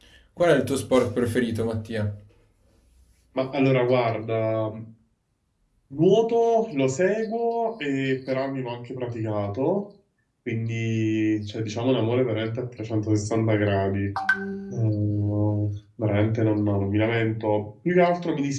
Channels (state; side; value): identical; both; correlation 1.00